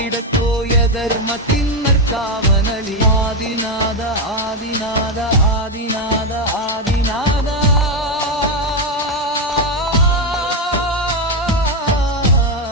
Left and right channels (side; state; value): both; normal; correlation 0.07